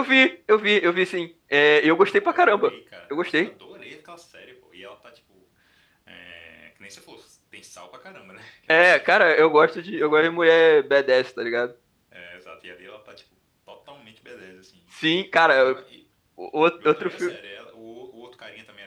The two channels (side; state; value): both; identical; correlation 1.00